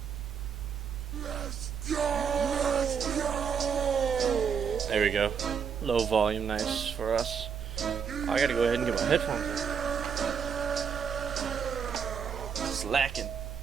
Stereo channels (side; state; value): left; quieter; 6.9 dB